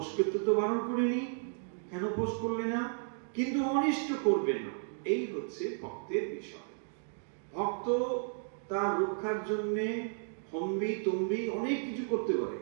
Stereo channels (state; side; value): silent; left; digital silence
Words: করতে তো বারণ করিনি, কেন ফোঁস করলে না? কিন্তু অনিষ্ট করবে না, এই হচ্ছে ভক্তের বিষয়। ভক্ত তার রক্ষার জন্য হম্বি তম্বি অনেক কিছু করতে পারে,